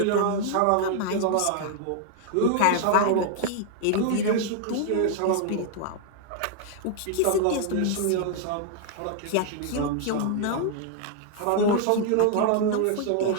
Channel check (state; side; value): different; both; correlation 0.00